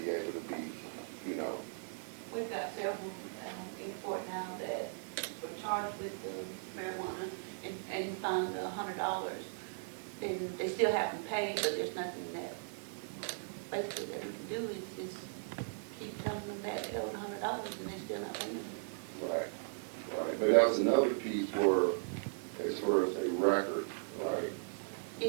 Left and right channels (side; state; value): left; silent; digital silence